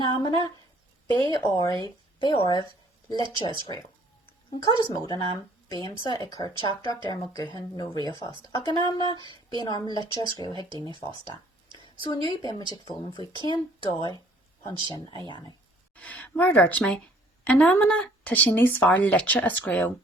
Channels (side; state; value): both; normal; correlation 0.59